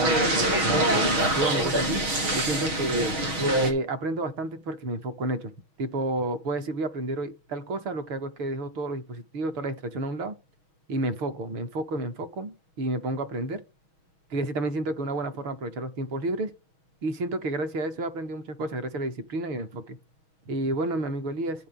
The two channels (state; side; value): late; left; 6.4 ms